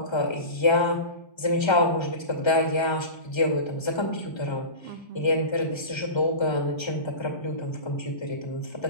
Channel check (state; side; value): late; right; 1.3 ms